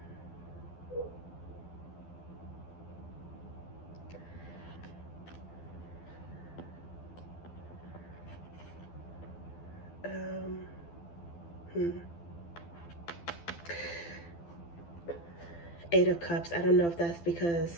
Eight of Cups. I don't know if that's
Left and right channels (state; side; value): late; right; 12 ms